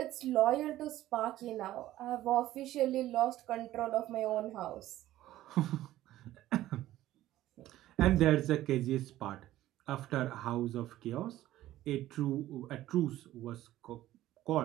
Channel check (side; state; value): left; quieter; 14.6 dB